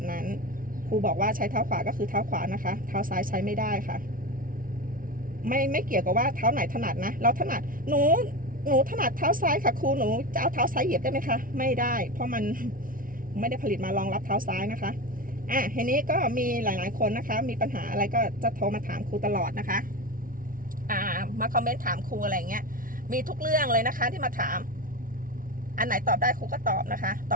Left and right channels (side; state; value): left; late; 0.40 ms